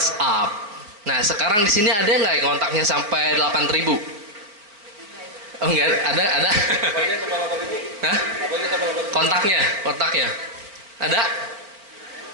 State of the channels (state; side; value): late; left; 4.6 ms